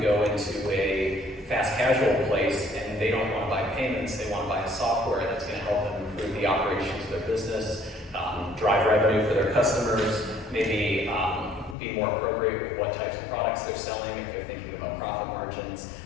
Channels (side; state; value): right; drops out; at 11.8 s